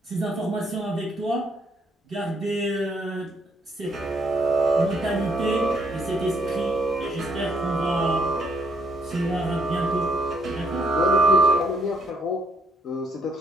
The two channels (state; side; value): normal; both; correlation 0.71